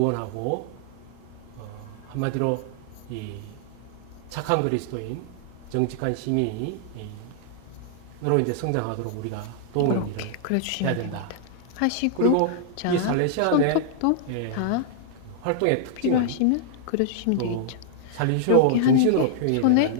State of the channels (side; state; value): both; different; correlation -0.01